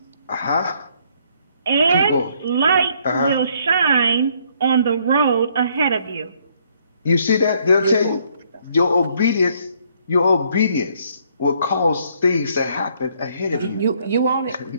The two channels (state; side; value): inverted; both; correlation -0.66